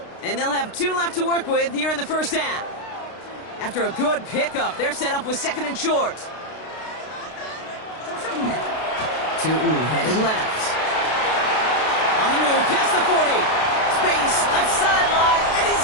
And they'll have 2 left to work with here in the first half. After a good pickup, they're set up with 2nd and short. Tootin headed left. On the move, past the 40. Space, left sideline, and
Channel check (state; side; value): late; right; 32 ms